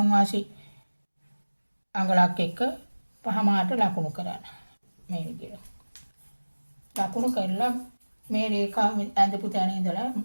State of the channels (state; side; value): inverted; both; correlation -1.00